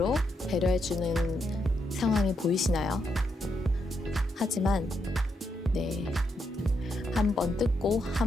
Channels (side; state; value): both; normal; correlation 0.80